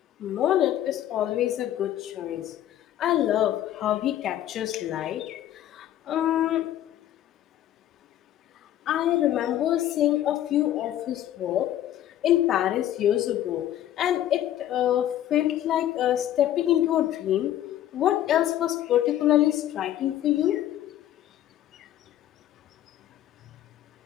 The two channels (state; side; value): quieter; right; 12.1 dB